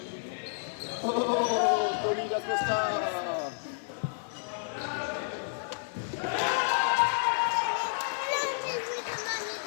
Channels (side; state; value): right; silent; 57 dB below the other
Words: Oh, Tony Da Costa!